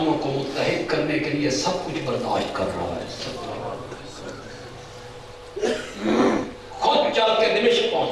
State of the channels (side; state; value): both; identical; correlation 1.00